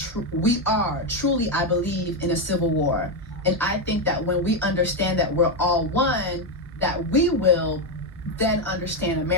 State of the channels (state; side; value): normal; both; correlation 0.06